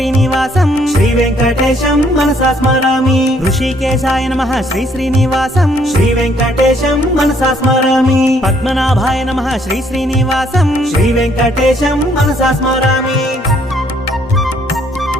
శ్రీ వెంకటేశం మనసా స్మరామి ఋషికేశాయ నమః శ్రీ శ్రీనివాసం శ్రీ వెంకటేశం మనసా స్మరామి పద్మనాభాయ నమః శ్రీ శ్రీనివాసం శ్రీ వెంకటేశం మనసా స్మరామి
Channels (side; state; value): both; normal; correlation 0.66